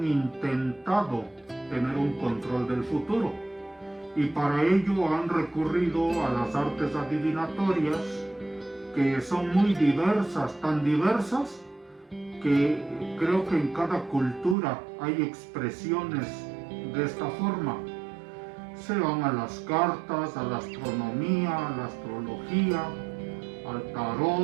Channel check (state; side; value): drops out; left; at 14.6 s